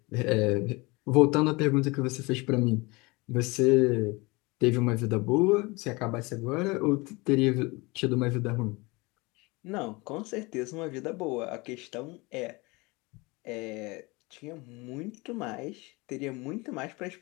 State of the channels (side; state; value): right; quieter; 25.0 dB